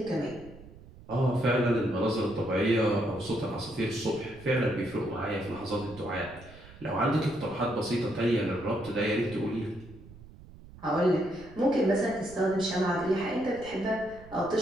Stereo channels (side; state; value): right; noise; rumble, 19 dB below the sound